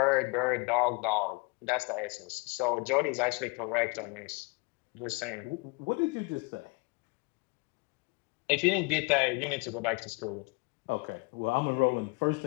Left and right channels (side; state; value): right; quieter; 29.0 dB